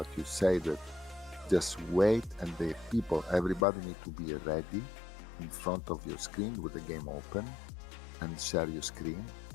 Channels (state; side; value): drops out; right; at 3.7 s